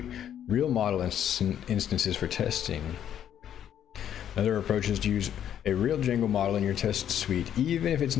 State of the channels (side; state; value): right; quieter; 10.0 dB